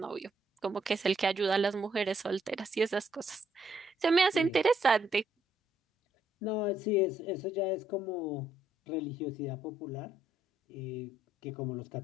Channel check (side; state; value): both; normal; correlation 0.72